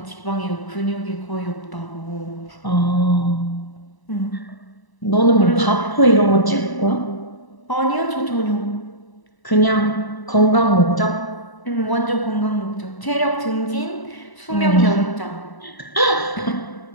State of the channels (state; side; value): late; right; 1.0 ms